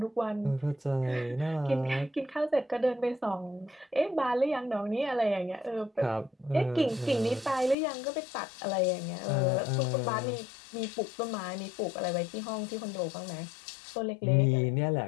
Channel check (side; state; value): right; drops out; at 7.8 s